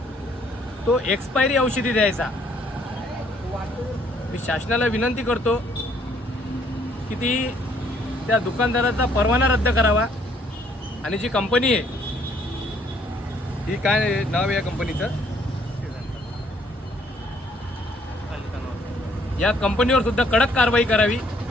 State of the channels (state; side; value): normal; both; correlation 0.65